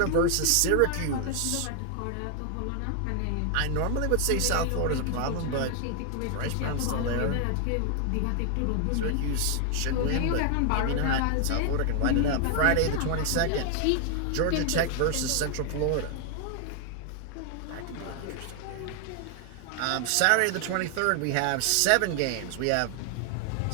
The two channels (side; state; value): both; different; correlation 0.00